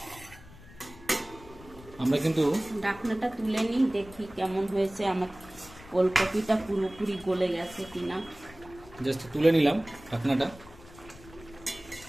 আমরা কিন্তু ঢাকনাটা তুলে নিই, দেখি কেমন হয়েছে। আমার ওলকপিটা পুরোপুরি গলে গেছে কিনা। জাস্ট তুলে নিলাম ঢাকনাটা।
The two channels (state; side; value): noise; left; rumble, 20 dB below the sound